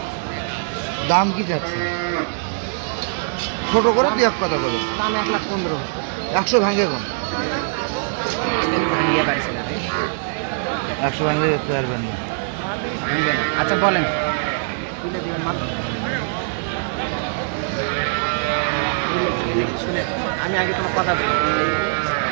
দাম কি যাচ্ছে? ছোট করে দুই এক কথা বলে। দাম 1,15,000। 100 ভাঙে কম। ভাঙিয়ে পারছিলাম 100 ভাঙে দেখতে পারবেন না। আচ্ছা বলেন তুলে দিবেন মাল আমি আগে তোমার কথা বলি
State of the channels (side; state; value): left; silent; digital silence